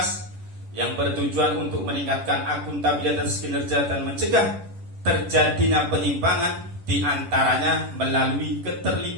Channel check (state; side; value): late; left; 10 ms